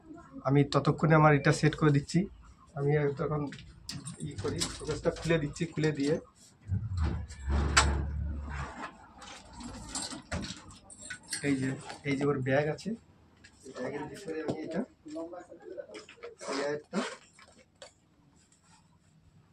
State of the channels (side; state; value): both; identical; correlation 1.00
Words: আমি ততক্ষণে আমার এটা সেট করে দিচ্ছি। আমি তখন করি ফোকাসটা খুলে দিচ্ছি, খুলে দিয়ে এই যে ওর ব্যাগ আছে, ব্যাগের ভিতরে আমি এটা